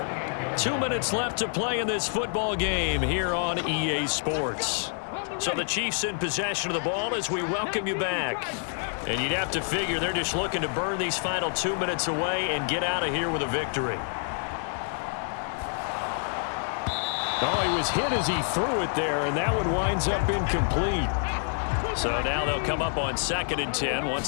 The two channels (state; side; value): silent; right; 56 dB below the other